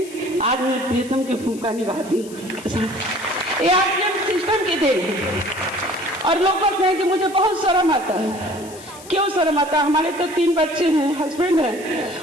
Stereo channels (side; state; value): left; noise; hiss, 18 dB below the sound